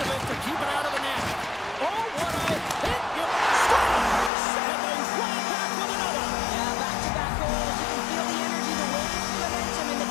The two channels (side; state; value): right; drops out; at 4.3 s